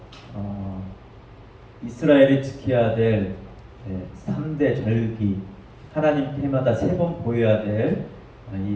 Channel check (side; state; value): both; identical; correlation 1.00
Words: 이스라엘이 지켜야 될 3대 절기, 하나님께 해마다 3번 보여야 될